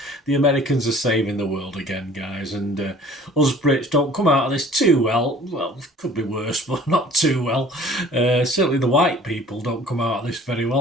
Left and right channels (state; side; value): normal; both; correlation 0.50